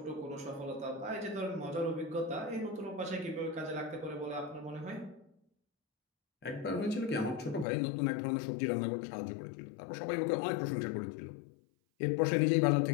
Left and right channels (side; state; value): right; drops out; at 7.7 s